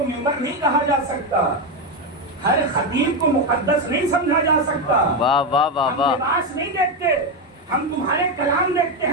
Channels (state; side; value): normal; both; correlation 0.09